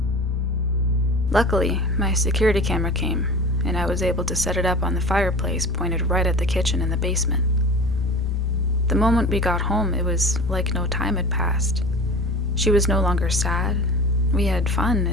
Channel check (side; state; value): both; normal; correlation 0.37